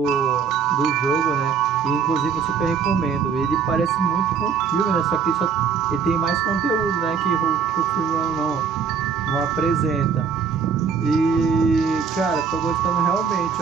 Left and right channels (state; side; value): quieter; left; 6.3 dB